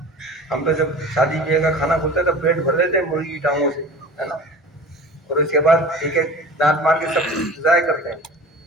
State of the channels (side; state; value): both; normal; correlation 0.38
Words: ہم تو جب شادی بیاہ کا کھانا کھلتا ہے تو پیٹ بھر لیتے ہیں مرغی کی ٹانگوں سے، ہے نا، اور اس کے بعد ٹھیک ہے دانت مار کے سب ضائع کرتے ہیں۔